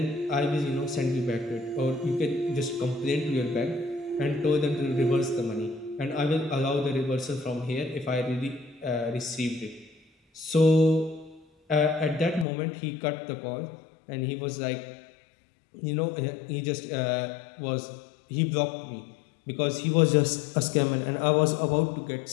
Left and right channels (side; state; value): right; drops out; at 12.5 s